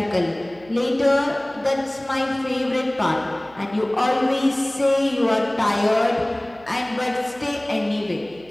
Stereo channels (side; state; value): right; noise; hum, 25 dB below the sound